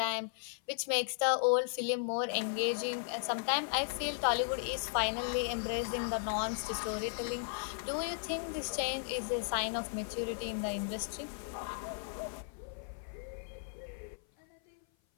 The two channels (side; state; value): right; silent; 54 dB below the other